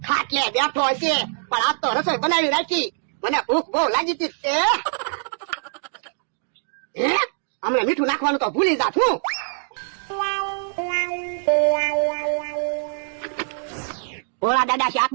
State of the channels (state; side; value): silent; left; digital silence